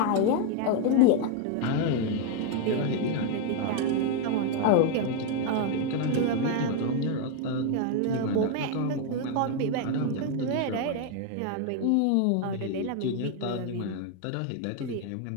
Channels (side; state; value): both; different; correlation 0.01